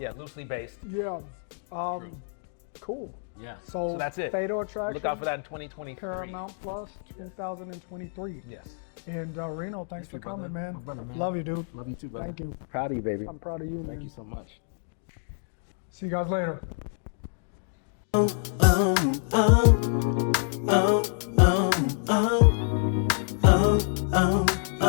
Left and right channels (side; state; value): right; silent; digital silence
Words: Loosely based. Yeah. Cool. Yeah. So, that's it. Fatal Attraction. Look out for that in 2023. Paramount Plus 2023. Yes. And Reno, thanks for you, brother. coming, man. My brother, man. Love you, dude. Love you too, brother. Thank you. Proud of you, baby. I'm proud of you, man. Thank you so much. See you guys later. oh, oh, oh, oh, oh, oh, oh.